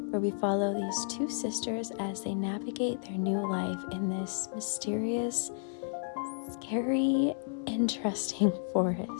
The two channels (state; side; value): silent; right; digital silence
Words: where we follow these two sisters as they navigate their new life in this mysterious, scary, interesting